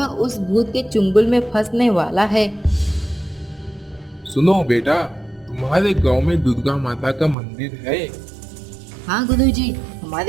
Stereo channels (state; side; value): drops out; left; at 7.4 s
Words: उस भूत के चुंगल में फंसने वाला है। सुनो बेटा, तुम्हारे गांव में दुर्गा माता का मंदिर है। हाँ गुरुजी,